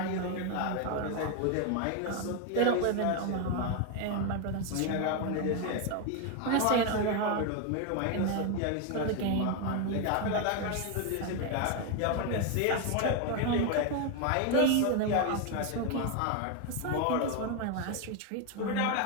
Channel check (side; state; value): both; different; correlation 0.01